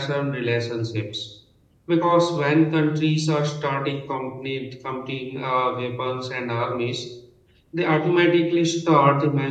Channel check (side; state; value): both; identical; correlation 1.00